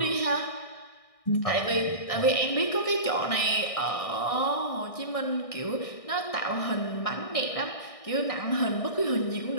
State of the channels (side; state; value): right; late; 1.6 ms